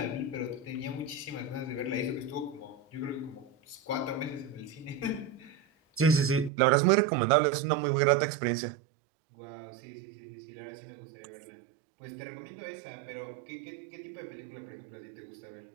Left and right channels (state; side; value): drops out; left; at 6.5 s